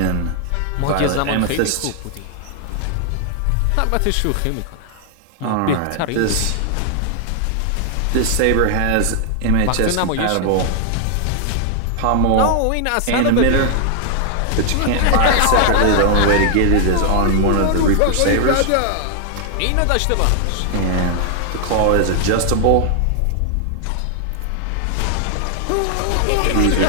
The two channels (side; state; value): both; different; correlation 0.00